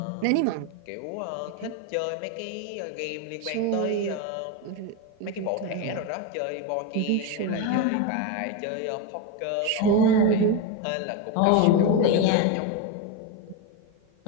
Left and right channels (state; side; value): different; both; correlation 0.04